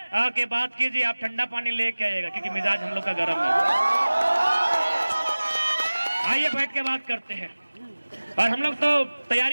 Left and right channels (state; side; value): inverted; both; correlation -1.00